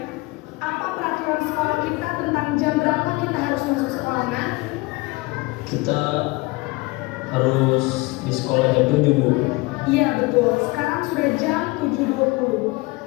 apa peraturan sekolah kita tentang jam berapa kita harus masuk sekolah nak? Kita harus di sekolah jam 7 Bu. Iya betul, sekarang sudah jam 7.20.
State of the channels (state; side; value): quieter; right; 23.4 dB